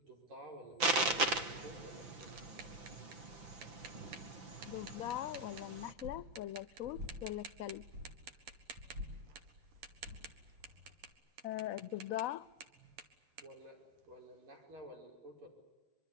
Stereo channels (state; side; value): late; left; 5.9 ms